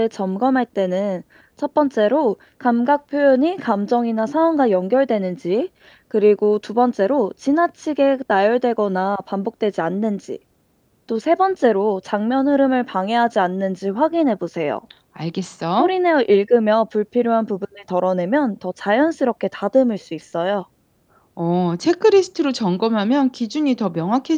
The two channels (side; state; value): both; identical; correlation 1.00